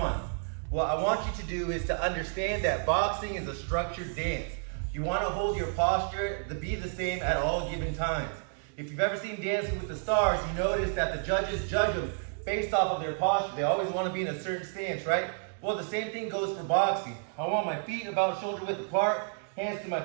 What I want you to do is to understand that boxing is a structured dance. You want to hold your posture to be the same at all given times. If you've ever seen Dancing with the Stars, you notice that the judges judge them based off of their posture. They always want to be in a certain stance, right? Well, the same thing goes for boxing. I want my feet about shoulder width apart, hands to my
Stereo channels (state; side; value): silent; left; 57 dB below the other